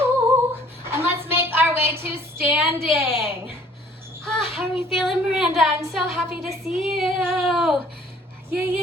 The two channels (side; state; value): both; normal; correlation 0.56